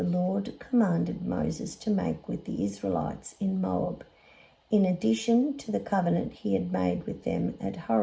Lord commanded Moses to make with the Israelites in Moab, in addition to the covenant he had made with them at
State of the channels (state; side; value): identical; both; correlation 1.00